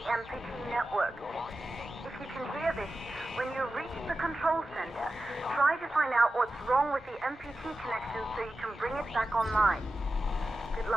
MPT network. If you can hear this, when you reach the control center, try to find out what's wrong with the MPT connection so you can bring it back online. Good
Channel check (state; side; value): normal; both; correlation 0.93